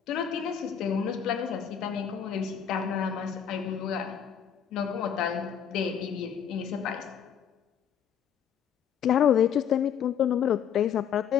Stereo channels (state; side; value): quieter; right; 8.3 dB